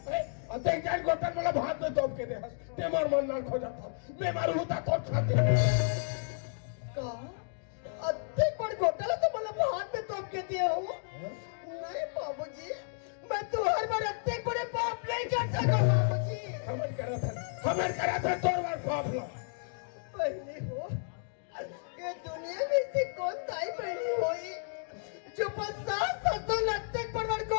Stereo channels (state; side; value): silent; right; digital silence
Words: अते जान गोतन वाला भात में तोप के दे हंस ते मार मन ना खो जाता मैं मारू होता तो छाती का अत्ते बड़ घोटाला तो मतलब हाथ में तोप के दिए हो नहीं बाबूजी मैं तो हर बार अत्ते बड़े पाप नहीं कर सकता बाबूजी हमें करा था तोर बार पाप लो पहले हो ये दुनिया में से कौन ताई बहनी हुई जो 50-60 लत्ते पर बड़